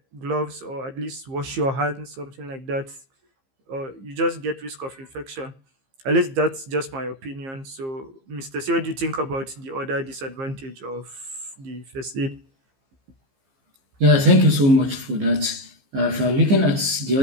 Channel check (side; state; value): left; late; 15 ms